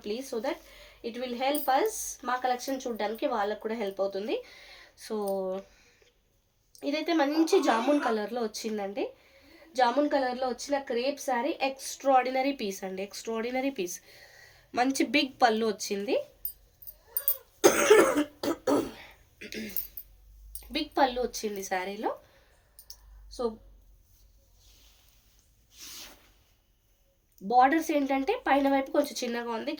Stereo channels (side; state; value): both; identical; correlation 1.00